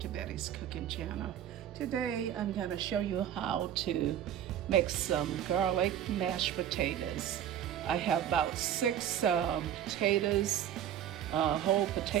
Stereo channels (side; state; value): left; quieter; 10.4 dB